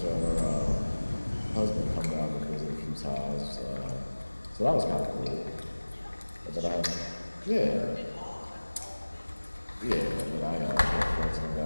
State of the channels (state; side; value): inverted; both; correlation -1.00